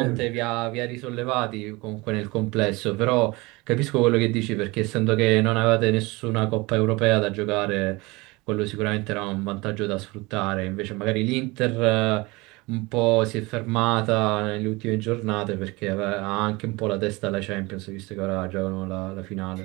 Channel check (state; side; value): quieter; left; 23.7 dB